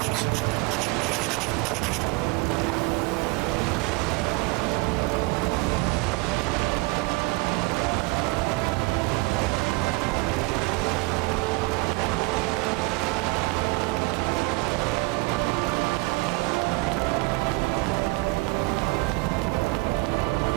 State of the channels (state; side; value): quieter; left; 24.5 dB